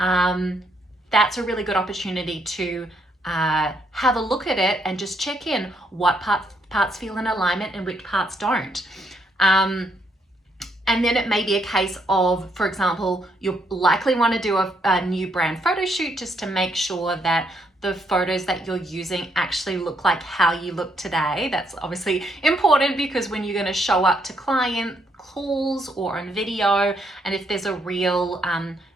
a really good opportunity to have a look at it and just check in what parts feel in alignment and which parts don't. And then it may be a case of, for example, you'll likely want to do a new brand photo shoot just to make sure that the photos that you're using actually look like how you look today. That's obviously important because when you're going to show up to client calls or on video, and if there's a real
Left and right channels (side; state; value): both; normal; correlation 0.74